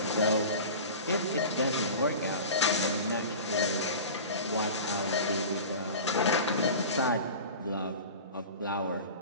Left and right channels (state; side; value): inverted; both; correlation -0.35